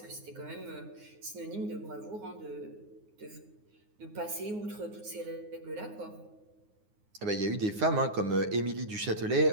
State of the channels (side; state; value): left; late; 9.6 ms